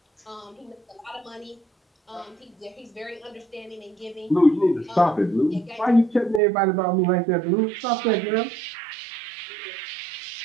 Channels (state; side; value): drops out; left; at 6.4 s